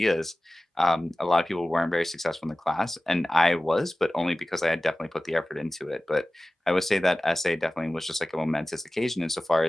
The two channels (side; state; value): both; normal; correlation 0.97